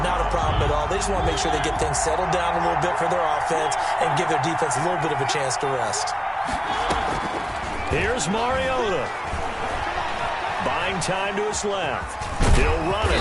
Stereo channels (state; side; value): identical; both; correlation 1.00